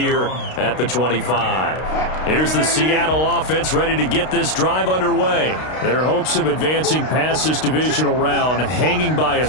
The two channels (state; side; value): late; right; 32 ms